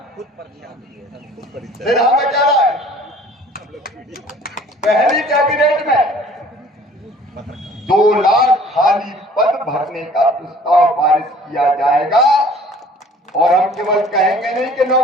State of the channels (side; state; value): both; normal; correlation 0.51